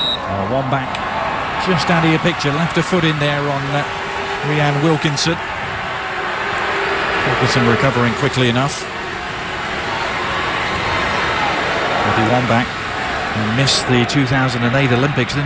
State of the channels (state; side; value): identical; both; correlation 1.00